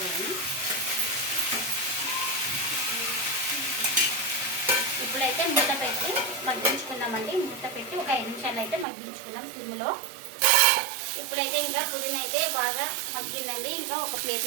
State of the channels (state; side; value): drops out; left; at 8.8 s